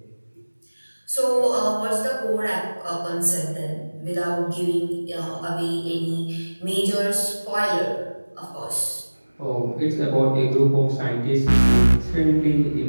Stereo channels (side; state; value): both; inverted; correlation -1.00